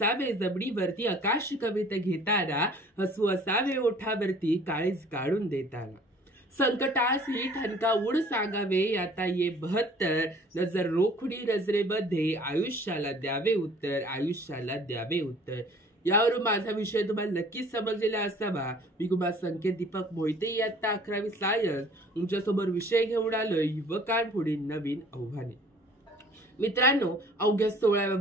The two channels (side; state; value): both; normal; correlation 0.52